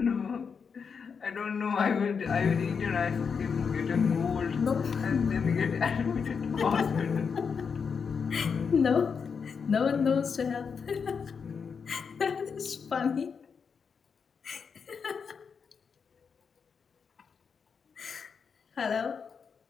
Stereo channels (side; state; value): right; quieter; 6.0 dB